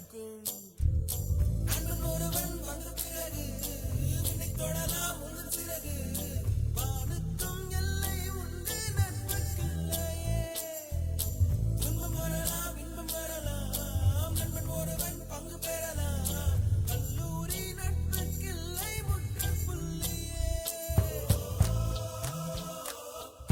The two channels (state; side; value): identical; both; correlation 1.00